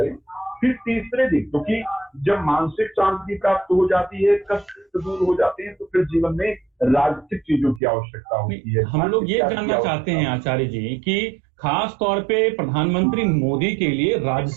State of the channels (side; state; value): left; drops out; at 7.8 s